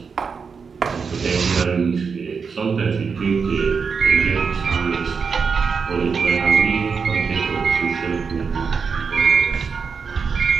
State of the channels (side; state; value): left; quieter; 5.6 dB